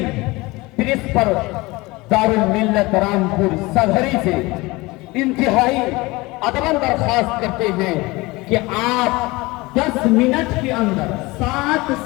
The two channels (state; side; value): quieter; right; 22.3 dB